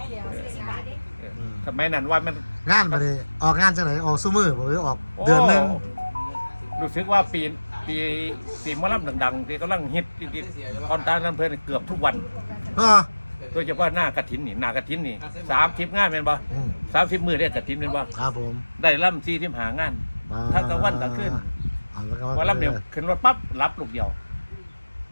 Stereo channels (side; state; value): both; inverted; correlation -1.00